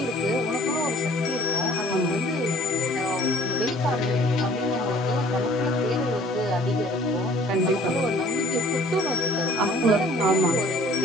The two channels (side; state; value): both; normal; correlation 0.54